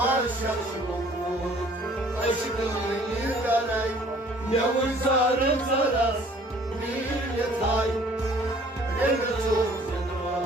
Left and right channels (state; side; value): normal; both; correlation 0.55